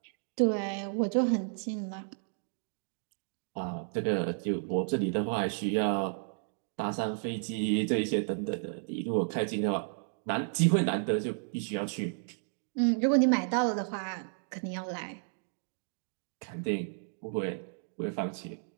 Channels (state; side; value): silent; left; digital silence